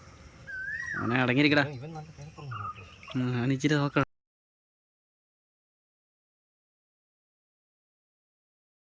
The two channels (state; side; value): identical; both; correlation 1.00